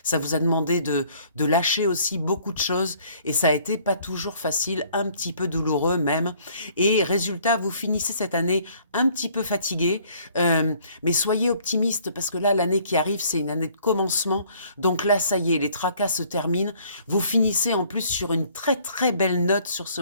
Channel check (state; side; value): inverted; both; correlation -0.59